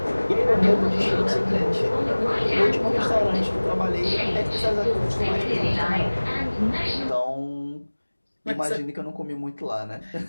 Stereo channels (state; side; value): inverted; both; correlation -1.00